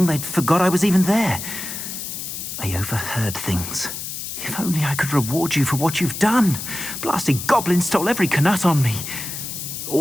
they'd forgot I was even there. I overheard things. If only I could reward you for what you've done. Blasted goblins stole every Knut on me.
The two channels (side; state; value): left; noise; hiss, 7 dB below the sound